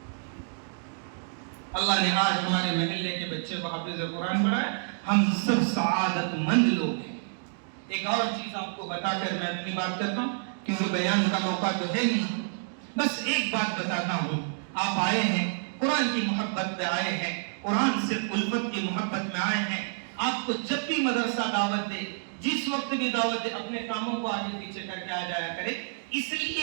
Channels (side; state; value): left; silent; digital silence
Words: اللہ نے آج ہمارے محلے کے بچے کو حافظ قرآن بنایا، ہم سب سعادت مند لوگ ہیں. ایک اور چیز آپ کو بتا کر میں اپنی بات کرتا ہوں، کیونکہ بیان کا موقع تو ہے نہیں. بس ایک بات بتاتا ہوں، آپ آئے ہیں قرآن کی محبت میں آئے ہیں، قرآن سے الفت کی محبت میں آئے ہیں. آپ کو جب بھی مدرسہ دعوت دے، جس وقت بھی دعوت دے، اپنے کاموں کو آگے پیچھے کر کے آ جایا کرے، اس لیے